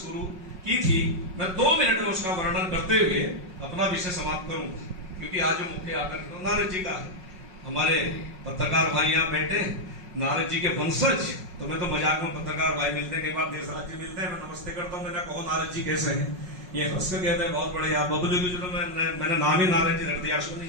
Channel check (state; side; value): late; left; 5.5 ms